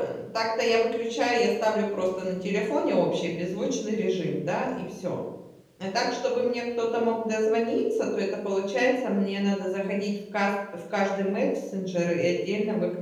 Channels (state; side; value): identical; both; correlation 1.00